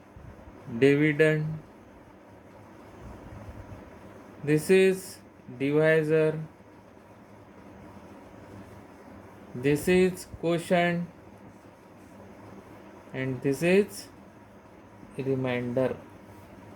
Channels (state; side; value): identical; both; correlation 1.00